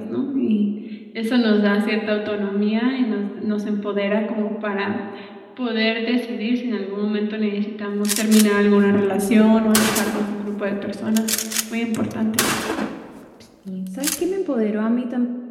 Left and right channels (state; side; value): identical; both; correlation 1.00